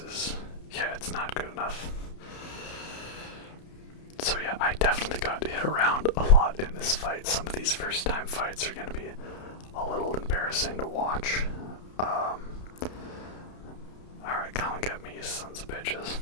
yeah, it's not good enough. So yeah, I definitely got hit around a lot in this fight. Some of these first time fights are going to be a little embarrassing to watch. Alright, come and get me, you sons of bitches.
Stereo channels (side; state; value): right; late; 31 ms